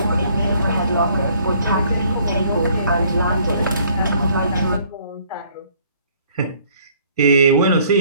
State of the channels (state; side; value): inverted; both; correlation -0.61